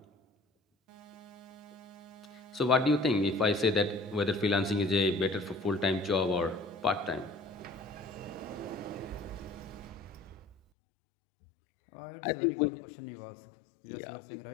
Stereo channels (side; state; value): right; drops out; at 10.6 s